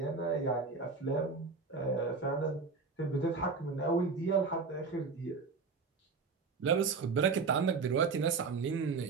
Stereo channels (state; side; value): quieter; left; 4.7 dB